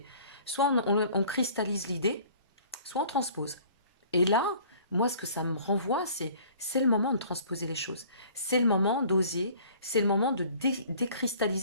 Soit on cristallise l'idée, soit on transpose. Et là, moi, ce que ça me renvoie, c'est le moment de transposer les choses. C'est le moment d'oser, c'est le moment de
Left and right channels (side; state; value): both; inverted; correlation -0.52